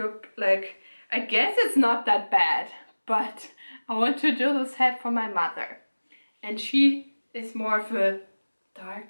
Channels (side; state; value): both; inverted; correlation -1.00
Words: like, I guess it's not that bad, but I want to do this hat for my mother. And she is more of a